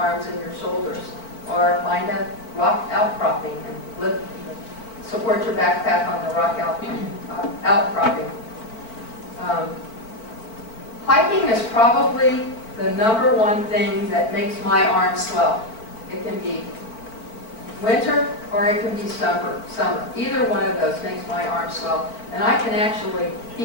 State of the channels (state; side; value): late; right; 4.5 ms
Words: and your shoulders. Or find a rock outcropping and support your backpack on the rock outcropping. Hiking is probably the number one thing that makes my arms swell. It can be winter or it can be summer. Either one of those makes my arms swell. And I can actually